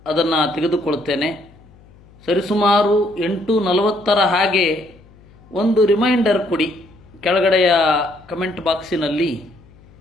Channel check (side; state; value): left; noise; hum, 26 dB below the sound